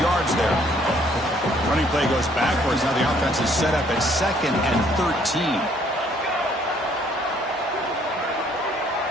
yards there. Running play goes backwards. Now the offense is set up at 2nd and 13.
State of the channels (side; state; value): both; normal; correlation 0.63